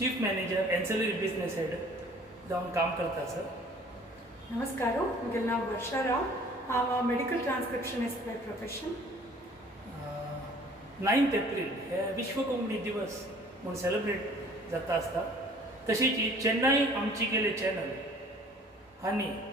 manager ancillary business head जावन काम करता सर. नमस्कार. म्हजें नांव वर्षा राव. हांव मेडिकल ट्रान्स्क्रिप्शनिस्ट बाय प्रोफेशन. 9 एप्रील हे विश्व कोंकणी दिवस म्हूण सेलिब्रेट जाता आसता. तशीच ही चेन्नई आमची गेले चॅनल हांणी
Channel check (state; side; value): normal; both; correlation 0.52